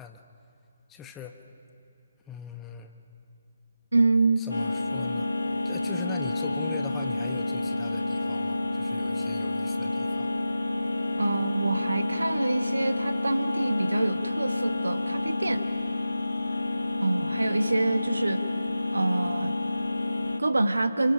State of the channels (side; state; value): both; inverted; correlation -0.92